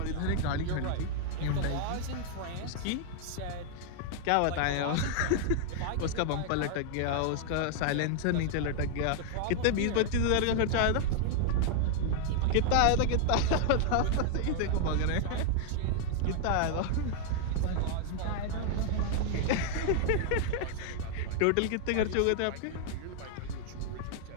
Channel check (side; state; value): both; different; correlation 0.00